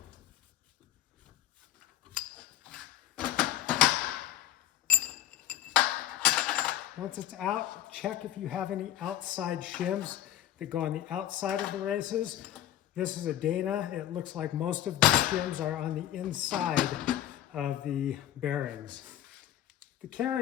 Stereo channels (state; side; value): quieter; right; 12.4 dB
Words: Once it's out, check if you have any outside shims that go on the outside of the races. This is a Dana. It looks like most of the shims are on the inside of the bearings. The